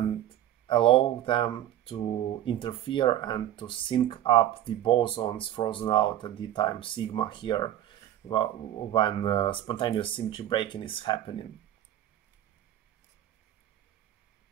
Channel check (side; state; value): left; quieter; 12.2 dB